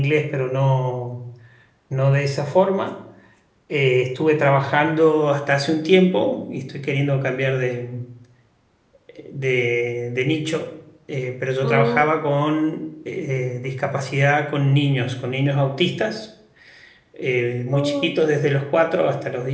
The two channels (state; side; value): identical; both; correlation 1.00